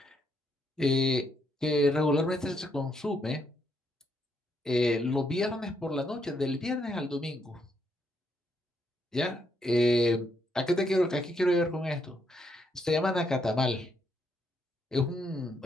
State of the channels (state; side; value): normal; both; correlation 0.76